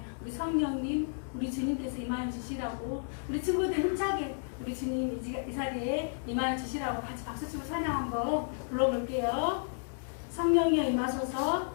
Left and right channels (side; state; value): right; silent; digital silence